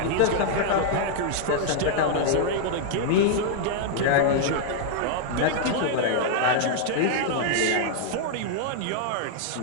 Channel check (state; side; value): different; both; correlation -0.01